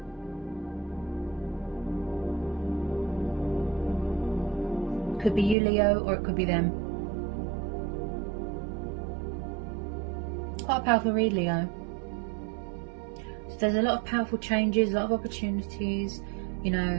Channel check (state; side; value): drops out; left; at 5.6 s